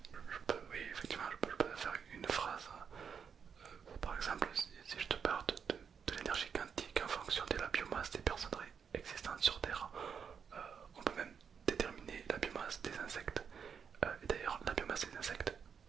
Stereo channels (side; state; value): left; quieter; 6.9 dB